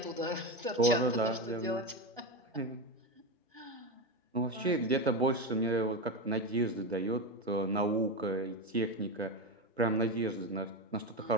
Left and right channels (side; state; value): both; normal; correlation 0.16